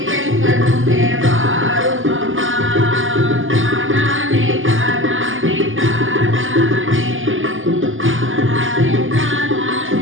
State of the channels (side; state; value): left; late; 0.58 ms